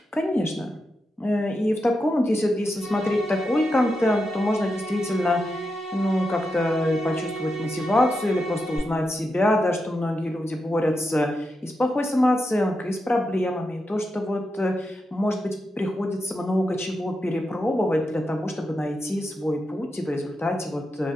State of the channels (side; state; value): both; normal; correlation 0.87